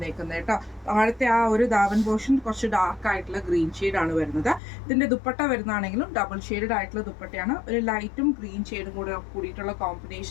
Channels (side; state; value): right; drops out; at 4.6 s